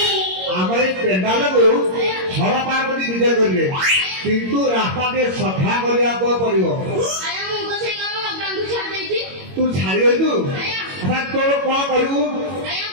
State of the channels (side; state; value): left; late; 22 ms